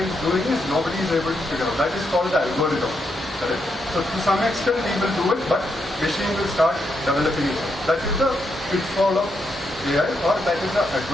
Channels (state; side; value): normal; both; correlation 0.81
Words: is doing is nobody is able to figure out. That is called the algorithm. Correct? So to some extent we will do it, but machine will start developing it. That is the pitfall of AI, or that is the